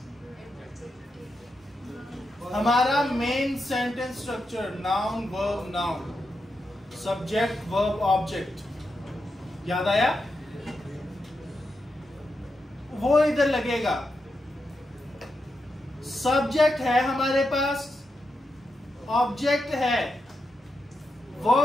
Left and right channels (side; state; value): both; normal; correlation 0.86